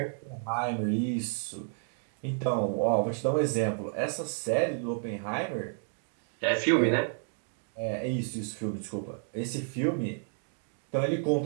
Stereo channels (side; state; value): left; silent; 57 dB below the other